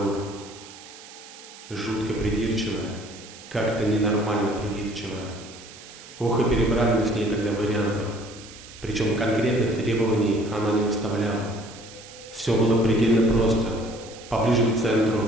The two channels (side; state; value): right; noise; hiss, 18 dB below the sound